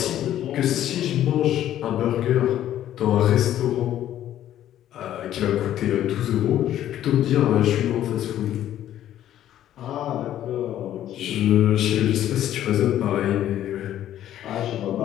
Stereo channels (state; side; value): quieter; right; 11.9 dB